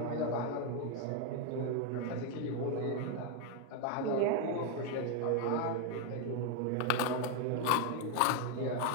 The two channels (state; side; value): different; both; correlation 0.01